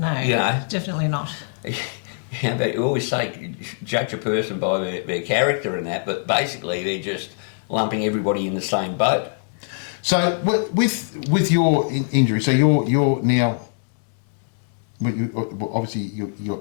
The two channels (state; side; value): silent; right; digital silence